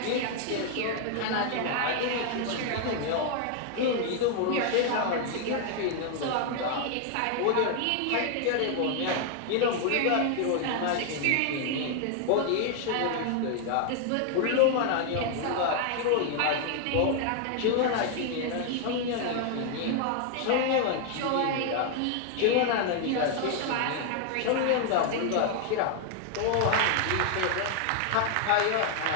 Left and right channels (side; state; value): both; different; correlation 0.00